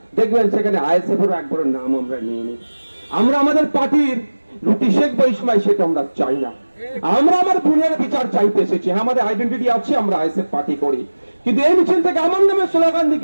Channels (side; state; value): both; inverted; correlation -1.00